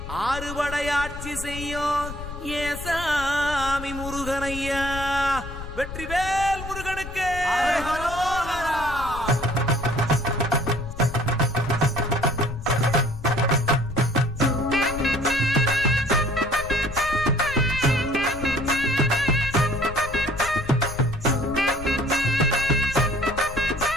ஆறுபடையாட்சி செய்யும் ஏசாமி முருகனையா. வெற்றிவேல் முருகனுக்கு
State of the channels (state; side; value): noise; left; rumble, 10 dB below the sound